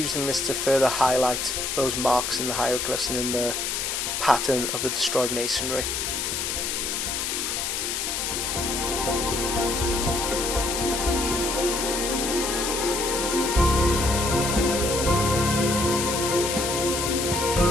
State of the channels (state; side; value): noise; left; hiss, 1 dB below the sound